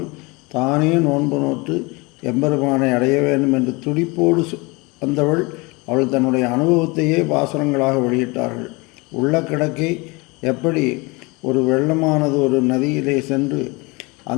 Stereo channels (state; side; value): quieter; right; 26.2 dB